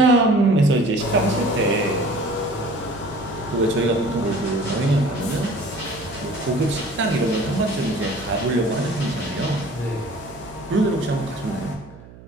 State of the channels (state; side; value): noise; right; hum, 20 dB below the sound